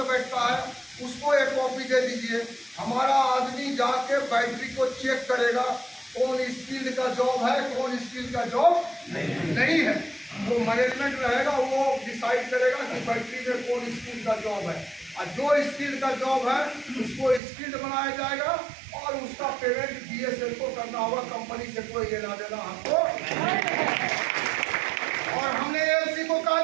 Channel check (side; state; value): left; drops out; at 17.4 s